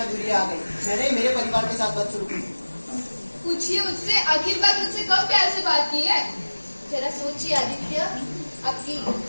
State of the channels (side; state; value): both; inverted; correlation -1.00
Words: दूरी आ गई। मैंने ही मेरे परिवार के साथ बात शुरू की। पूछिए उससे, आखिर बार मुझसे कब प्यार से बात की है? जरा सोचिए आदित्य, आपकी